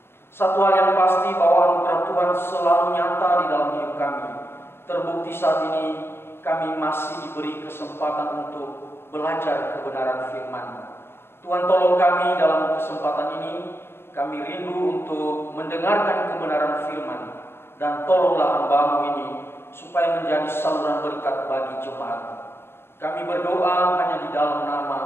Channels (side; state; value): right; late; 0.11 ms